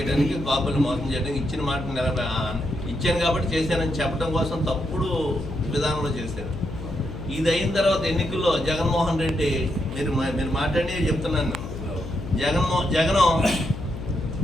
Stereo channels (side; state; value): left; noise; hum, 9 dB below the sound